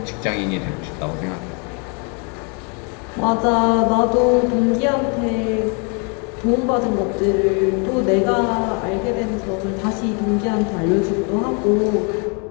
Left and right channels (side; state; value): right; quieter; 35.8 dB